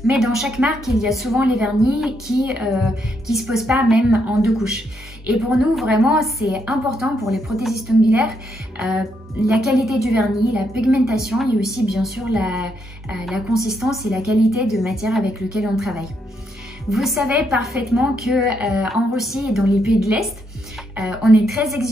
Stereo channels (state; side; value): normal; both; correlation 0.77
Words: Mais dans chaque marque, il y a souvent les vernis qui se posent pas même en 2 couches. Et pour nous, vraiment, c'est important pour les prothésistes ongulaires, la qualité du vernis, la pigmentation et aussi bien sûr la consistance et la qualité de matière avec laquelle on travaille. Vous savez parfaitement que en Russie et dans les pays de l'Est, on est très